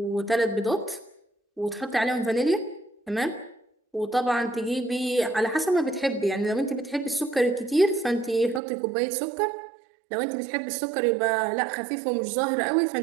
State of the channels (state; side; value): drops out; left; at 8.6 s